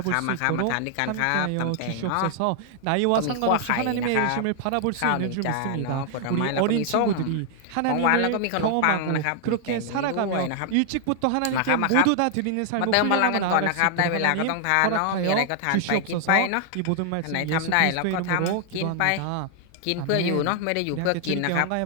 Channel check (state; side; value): different; both; correlation 0.00